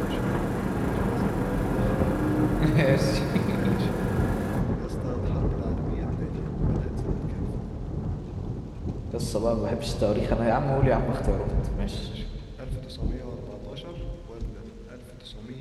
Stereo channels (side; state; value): both; identical; correlation 1.00